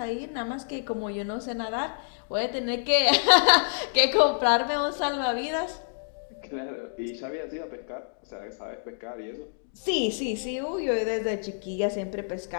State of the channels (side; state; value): right; silent; digital silence